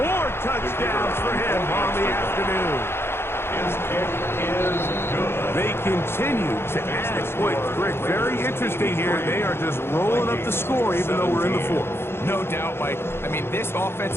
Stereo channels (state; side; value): late; right; 0.12 ms